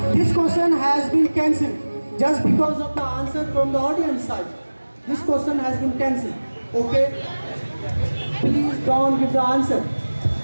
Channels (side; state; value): both; inverted; correlation -1.00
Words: This question has been cancelled just because of the answer from the audience side. This question has been cancelled. Okay? Please don't give the answer.